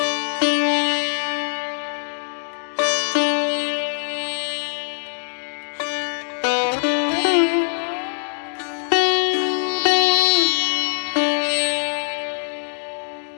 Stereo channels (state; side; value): silent; right; digital silence